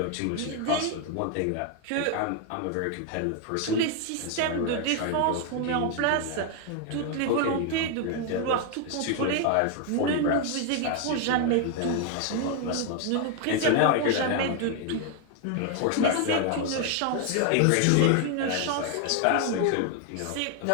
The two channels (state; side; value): different; both; correlation 0.00